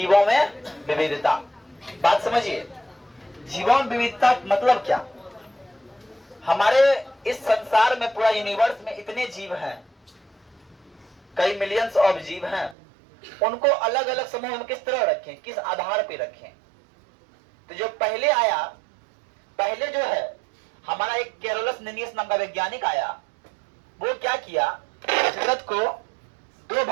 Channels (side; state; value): left; drops out; at 12.8 s